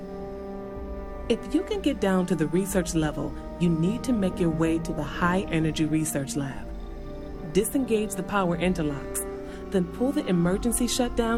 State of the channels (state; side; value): identical; both; correlation 1.00